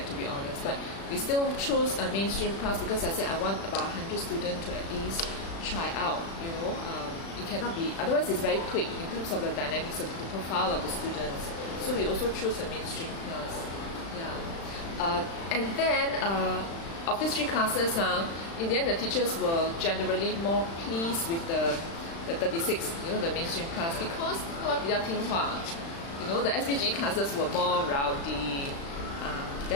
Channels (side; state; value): right; late; 36 ms